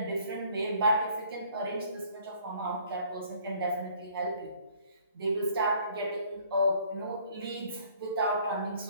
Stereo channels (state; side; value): inverted; both; correlation -0.58